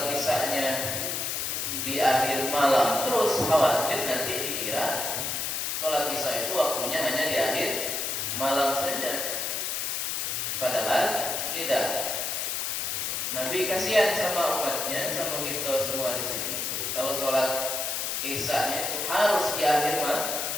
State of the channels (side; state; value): left; noise; hiss, 1 dB below the sound